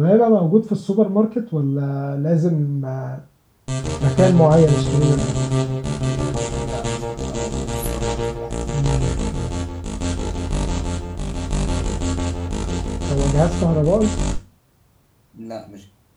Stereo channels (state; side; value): identical; both; correlation 1.00